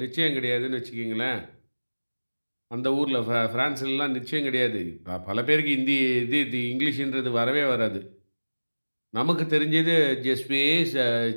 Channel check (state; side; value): inverted; both; correlation -1.00